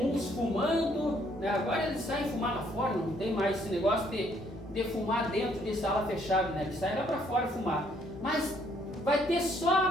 uns fumando, né? Agora eles saem fumar lá fora, não tem mais esse negócio de fumar dentro de sala fechada, né? Eles saem lá para fora fumar. Mas vai ter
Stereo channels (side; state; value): both; normal; correlation 0.67